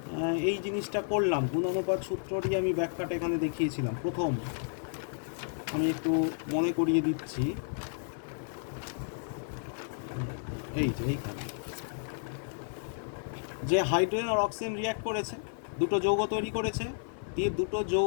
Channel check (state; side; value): silent; right; digital silence